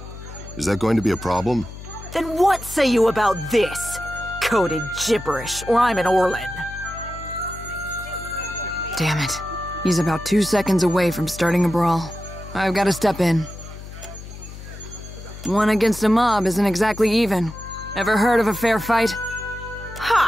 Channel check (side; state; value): left; noise; hum, 13 dB below the sound